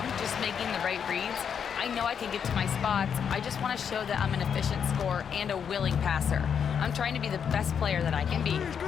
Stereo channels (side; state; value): right; quieter; 7.5 dB